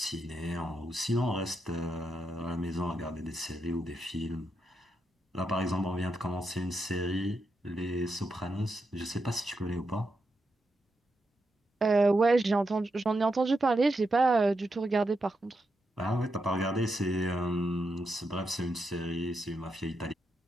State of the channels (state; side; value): normal; both; correlation 0.84